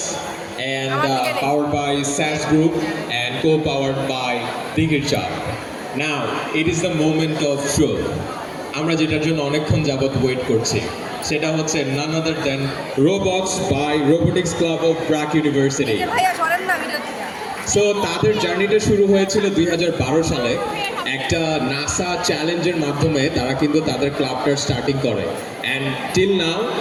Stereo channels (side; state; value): both; identical; correlation 1.00